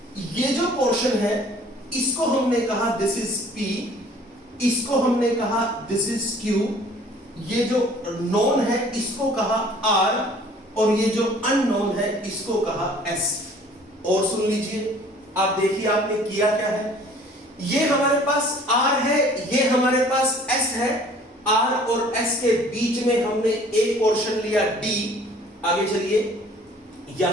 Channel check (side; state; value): both; normal; correlation 0.53